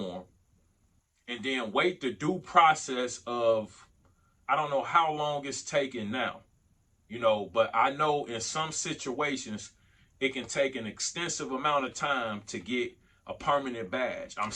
and then wait the due process of, I don't know how long it's taking now, but I know in some situations it can take an extensive amount of time to get a permanent badge. I'm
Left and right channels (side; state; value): both; identical; correlation 1.00